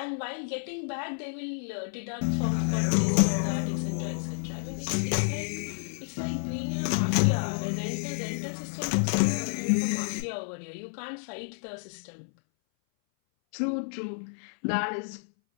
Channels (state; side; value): silent; right; 58 dB below the other